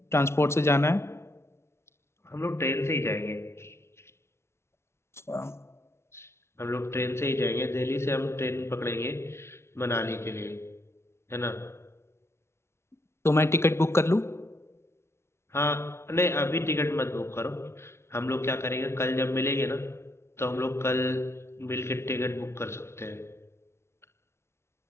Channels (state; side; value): late; right; 0.13 ms